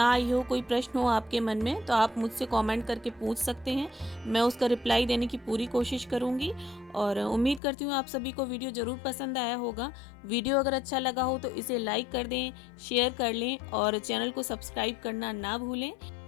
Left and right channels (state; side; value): drops out; right; at 7.6 s